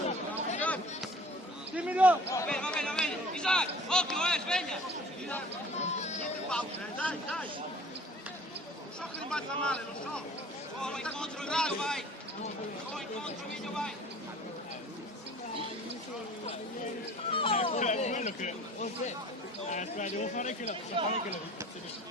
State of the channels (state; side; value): normal; both; correlation 0.48